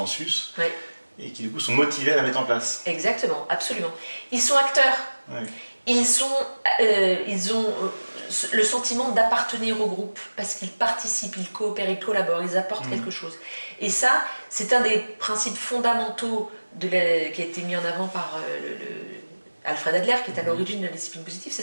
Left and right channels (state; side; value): inverted; both; correlation -1.00